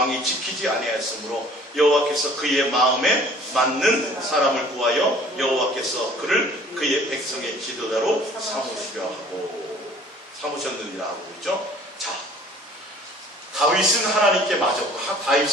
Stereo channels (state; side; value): normal; both; correlation 0.52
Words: 지키지 아니하였으므로 여호와께서 그의 마음에 맞는 사람을 구하여 여호와께서 그를 그의 백성의 지도자로 삼으셨느니라 하고 있죠. 자, 다윗은 하나님께 맞았고